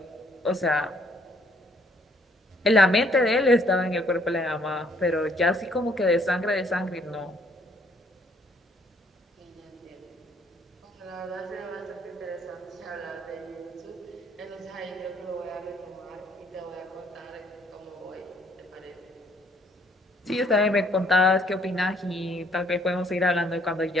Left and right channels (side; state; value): both; normal; correlation 0.64